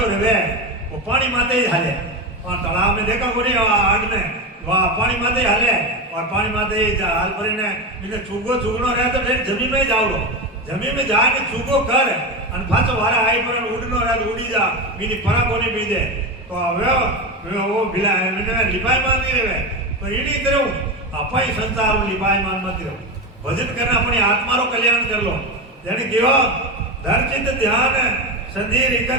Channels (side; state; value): both; normal; correlation 0.18